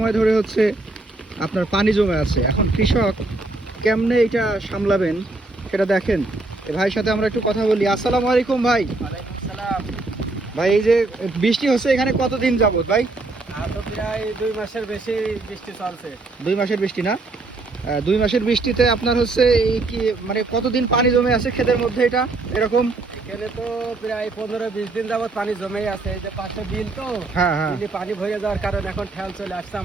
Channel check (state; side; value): quieter; left; 3.2 dB